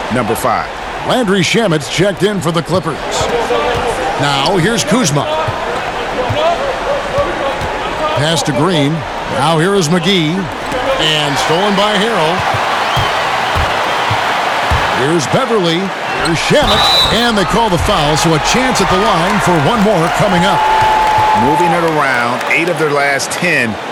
number 5. Landry Shamet's checked in for the Clippers. Now here's Kuzma. Pass to Green. Now here is McGee. And stolen by Harrell. Here's Beverly. Here's Shamet. And they call the foul, so a chance at the line for one more coming up. Moving it around, 8 of their last 10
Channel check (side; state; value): both; identical; correlation 1.00